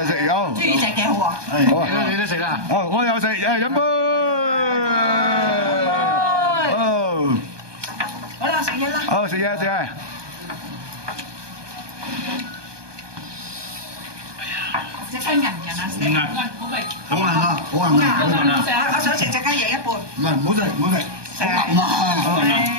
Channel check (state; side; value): late; left; 1.2 ms